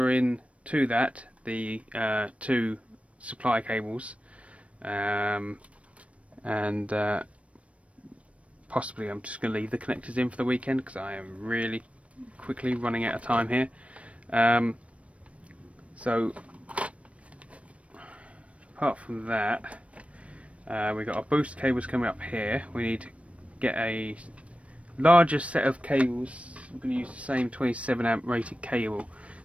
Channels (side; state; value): left; late; 0.063 ms